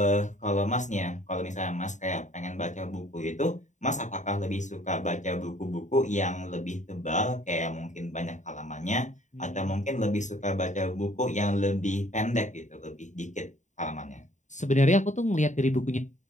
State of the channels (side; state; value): right; late; 0.35 ms